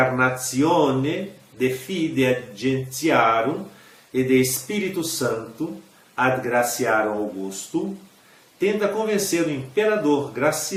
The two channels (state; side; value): identical; both; correlation 1.00